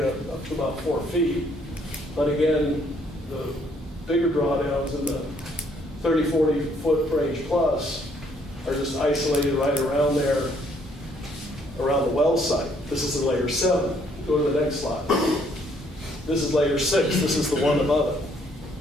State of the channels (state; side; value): normal; both; correlation 0.66